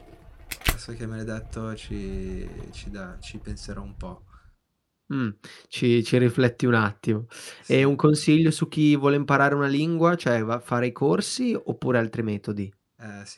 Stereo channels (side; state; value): both; identical; correlation 1.00